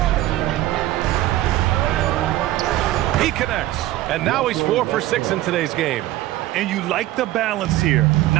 He connects. And now he's 4 for 6 in today's game. And you like the balance here,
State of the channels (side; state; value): left; quieter; 15.5 dB